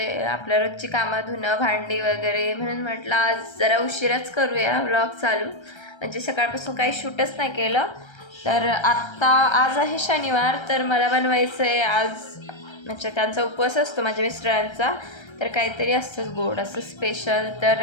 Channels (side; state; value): right; late; 1.3 ms